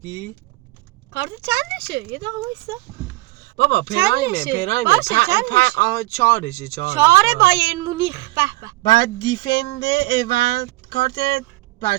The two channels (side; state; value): left; quieter; 20.5 dB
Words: کارت چندشه؟ یه دقیقه وایسا. بابا پرایم 4شه 4 بایرن مونیخ. به بعد دیفند اول کارت